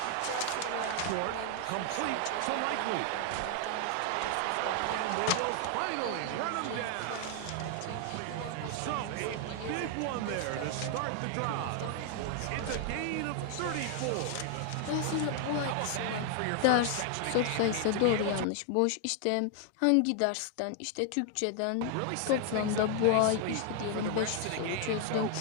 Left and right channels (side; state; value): both; different; correlation 0.00